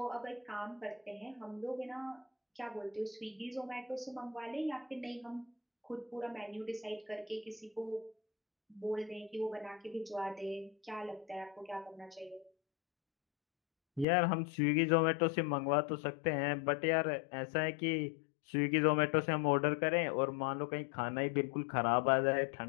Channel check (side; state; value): right; drops out; at 14.1 s